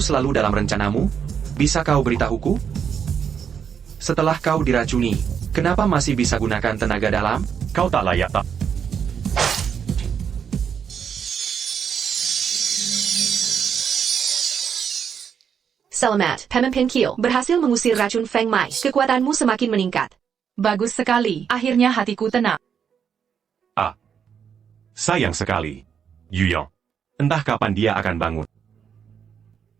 dalam rencanamu? Bisa kau beritahuku? Setelah kau diracuni, kenapa masih bisa gunakan tenaga dalam? Kau tak layak tak. Selamat, Pemimpin Kiel. Berhasil mengusir racun Feng Mai. Kekuatanmu semakin meningkat. Bagus sekali. Akhirnya hatiku tenang. Sayang sekali. Yuyang. Entah kapan dia akan bangun.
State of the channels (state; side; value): quieter; left; 7.5 dB